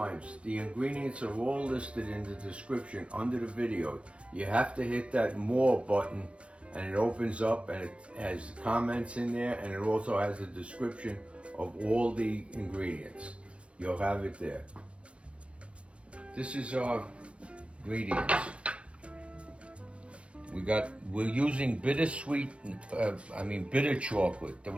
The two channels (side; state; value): left; late; 0.060 ms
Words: the ingredients are all listed in the description under the video. You have to hit that more button and it opens up and it has comments in there, and it also has a description of all the ingredients. You'll have it there. This is our ingredients. We're using bitter chocolate. The